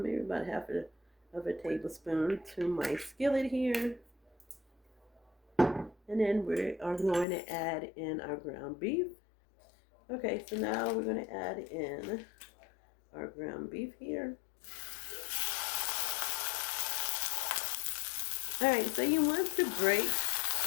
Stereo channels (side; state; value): right; drops out; at 7.2 s